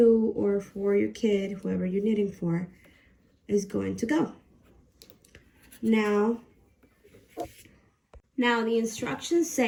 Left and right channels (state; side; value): identical; both; correlation 1.00